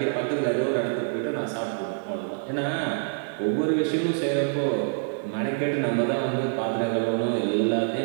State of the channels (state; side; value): silent; left; digital silence